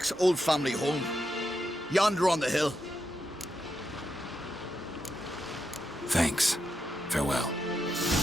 old family home. Yonder on the hill. Thanks. Farewell.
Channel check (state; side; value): normal; both; correlation 0.84